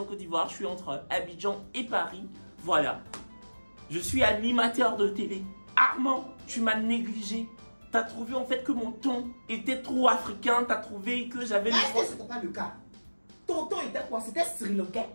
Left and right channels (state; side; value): inverted; both; correlation -1.00